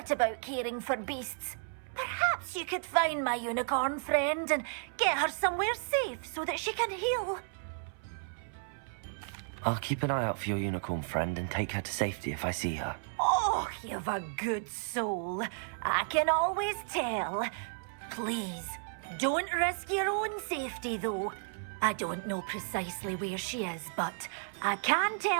about caring for beasts. Perhaps you could find my unicorn friend and get her somewhere safe so that she can heal. I'll keep an eye out for your unicorn friend and take her to safety if I see her. Oh, you've a good soul. I can always tell. Please, don't risk your own safety, though. I don't know precisely where she is, but I can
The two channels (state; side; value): silent; left; 56 dB below the other